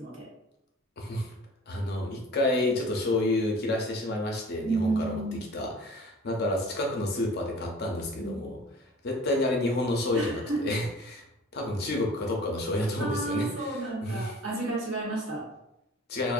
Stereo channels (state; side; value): normal; both; correlation 0.46